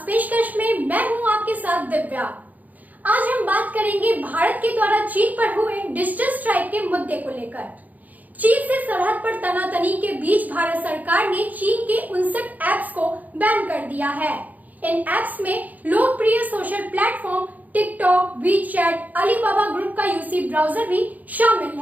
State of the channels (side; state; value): left; late; 0.079 ms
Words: पेशकश में मैं हूं आपके साथ दिव्या। आज हम बात करेंगे भारत के द्वारा चीन पर हुए डिजिटल स्ट्राइक के मुद्दे को लेकर। चीन से सरहद पर तनातनी के बीच भारत सरकार ने चीन के 59 ऐप्स को बैन कर दिया है। इन ऐप्स में लोकप्रिय social platform TikTok, WeChat, Alibaba group का यूसी ब्राउजर भी शामिल